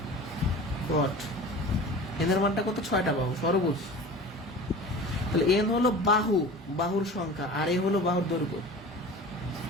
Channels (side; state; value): both; normal; correlation 0.38